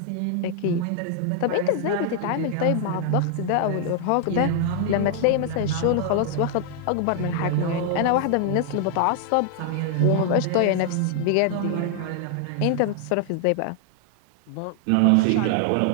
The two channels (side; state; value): both; different; correlation 0.00